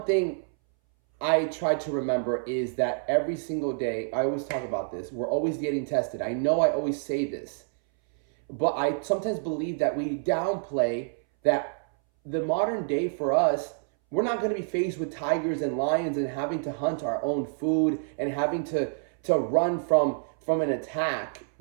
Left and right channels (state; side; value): silent; left; 60 dB below the other